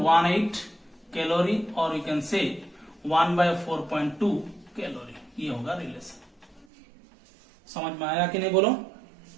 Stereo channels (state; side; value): drops out; left; at 6.7 s